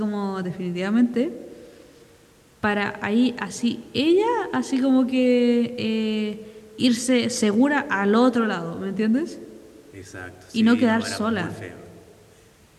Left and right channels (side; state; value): both; identical; correlation 1.00